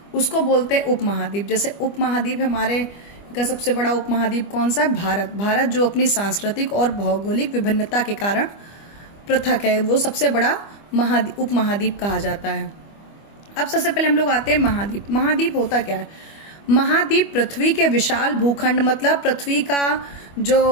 उसको बोलते हैं उपमहाद्वीप। जैसे उपमहाद्वीप हमारे का सबसे बड़ा उपमहाद्वीप कौन सा है? भारत। भारत जो अपनी सांस्कृतिक और भौगोलिक विभिन्नता के कारण पृथक है, वो सबसे बड़ा उपमहाद्वीप कहा जाता है। अब सबसे पहले हम लोग आते हैं महाद्वीप। महाद्वीप होता क्या है? महाद्वीप पृथ्वी के विशाल भूखंड, मतलब पृथ्वी का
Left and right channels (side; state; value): right; late; 25 ms